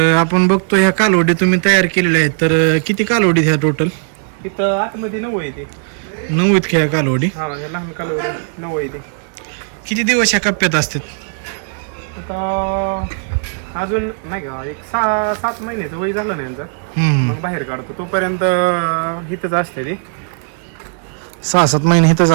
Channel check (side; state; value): left; silent; 58 dB below the other